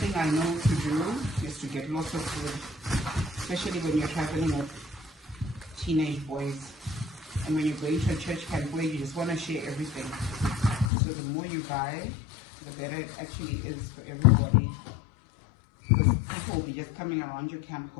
I know to do is to get lots of food, especially when you're traveling with teenage boys. And when you're going to a church camp where you just want to share everything. So the more you buy, the better it actually is for everybody. Because people will be just coming around your camp,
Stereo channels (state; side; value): drops out; right; at 10.9 s